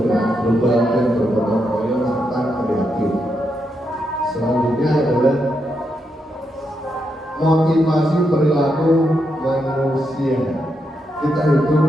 global dan bergotong royong serta kreatif. Selanjutnya adalah motivasi perilaku manusia. Kita hidup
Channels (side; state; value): both; normal; correlation 0.82